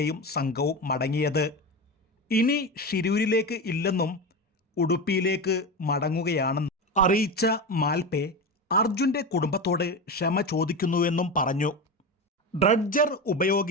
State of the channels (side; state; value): both; normal; correlation 0.21